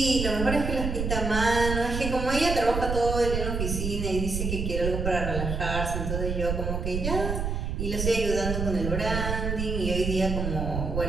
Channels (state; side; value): noise; right; rumble, 2 dB below the sound